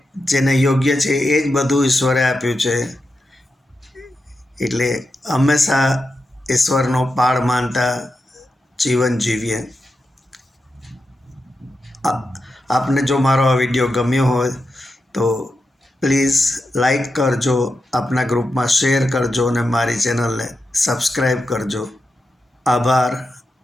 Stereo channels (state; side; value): normal; both; correlation 0.89